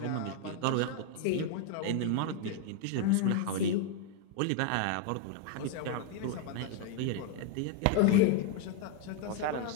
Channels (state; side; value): different; both; correlation 0.01